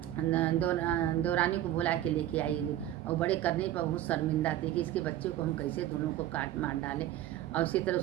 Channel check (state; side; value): quieter; left; 12.9 dB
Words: दौरानी को बुला के लेके आई और बड़े करने पर बहुत शर्मिंदा थी कि इसके बच्चे को हम कैसे दोनों को काट मार डालें। और उसी तरह